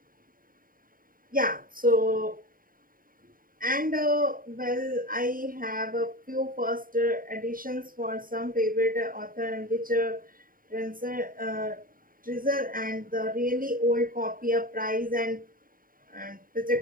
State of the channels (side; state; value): left; late; 0.41 ms